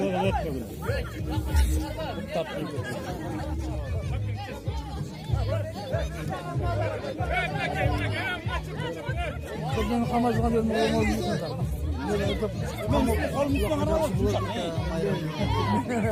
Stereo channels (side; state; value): both; identical; correlation 1.00